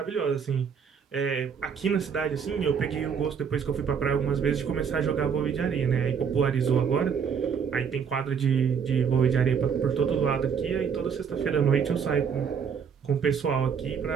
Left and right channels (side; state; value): left; quieter; 6.9 dB